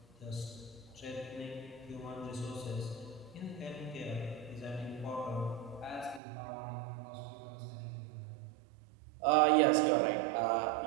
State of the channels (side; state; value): left; drops out; at 6.2 s